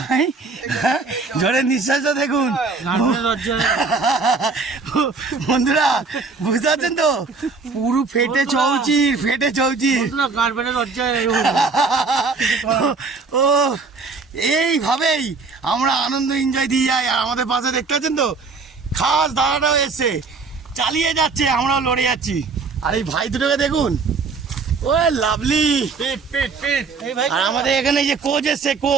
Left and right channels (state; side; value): quieter; left; 4.4 dB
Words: হ্যাঁ, জোরে নিঃশ্বাসও দেখুন বন্ধুরা, বুঝতে পারছেন তো, পুরো ফেটে চৌচির ও এইভাবেই আমরা আনন্দ এনজয় দিয়ে যাই। আর আমাদের পাশে দেখতে পাচ্ছেন তো খাস দাদাটাও এসছে, চালিয়ে যাচ্ছে, আমরাও লড়ে যাচ্ছি। আর এই ভাই দুটোকে দেখুন, ও লাভলি। আর আমাদের এখানে যে কোচ এসছে,